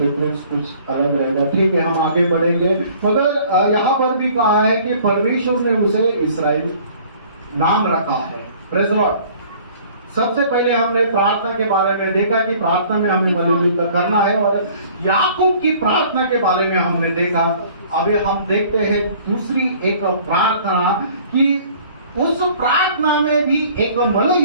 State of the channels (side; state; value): both; inverted; correlation -0.53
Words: कुछ अलग रहेगा, ठीक है, हम आगे बढ़ेंगे। मगर यहाँ पर भी कहा है कि परमेश्वर ने उसे इस्राएल नाम रखा है। Praise the Lord. सबसे पहले हमने प्रार्थना के बारे में देखा कि प्रार्थना में हमें मिलजुल करना है, और याकूब की प्रार्थना के बारे में हमने देखा। अभी हम देखते हैं दूसरी एक प्रार्थना कि उस प्रार्थना में भी एक